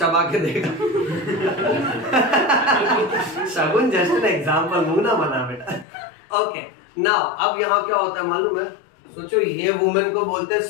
के देगा। शगुन जस्ट एन एग्जाम्पल, मुंह ना बना बेटा। ओके नाउ अब यहाँ क्या होता है मालूम है, सोचो ये वुमेन को बोलते हैं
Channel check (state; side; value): drops out; right; at 5.9 s